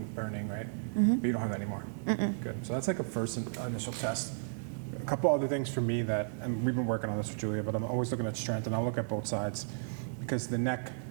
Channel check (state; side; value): silent; left; digital silence